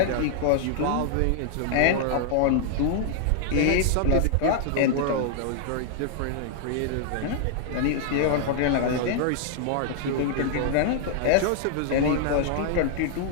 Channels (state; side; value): different; both; correlation -0.01